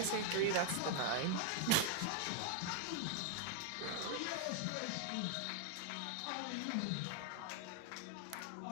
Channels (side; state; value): both; different; correlation 0.00